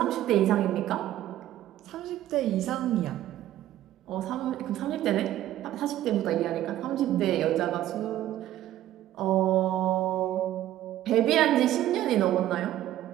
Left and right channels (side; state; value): left; quieter; 13.3 dB